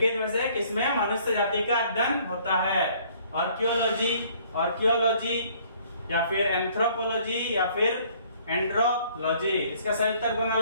में से किसमें मनुष्य जाति का अध्ययन होता है? आर्कियोलॉजी, आर्कियोलॉजी या फिर एंथ्रोपोलॉजी या फिर एंड्रोलॉजी। इसका सही उत्तर कौन हो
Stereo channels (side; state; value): both; inverted; correlation -0.59